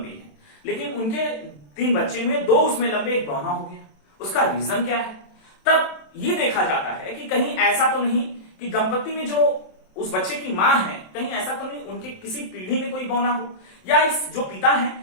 हैं, लेकिन उनके 3 बच्चे हुए, 2 उसमें लंबे, एक बौना हो गया। उसका रीजन क्या है? तब ये देखा जाता है कि कहीं ऐसा तो नहीं कि दंपति में जो उस बच्चे की मां है, कहीं ऐसा तो नहीं उनके किसी पीढ़ी में कोई बौना हो, या इस जो पिता है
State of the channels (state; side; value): late; right; 27 ms